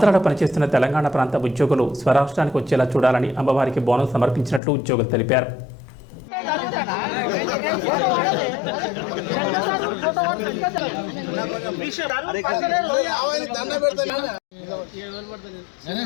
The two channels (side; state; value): right; drops out; at 4.6 s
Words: పనిచేస్తున్న తెలంగాణ ప్రాంత ఉద్యోగులు స్వరాష్ట్రానికి వచ్చేలా చూడాలని అమ్మవారికి బోనం సమర్పించినట్లు ఉద్యోగులు తెలిపారు.